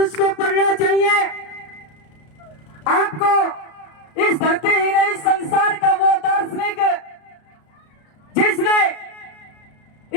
को पढ़ना चाहिए। आपको इस धरती ही नहीं, संसार का वो दार्शनिक जिसने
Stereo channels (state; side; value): late; right; 33 ms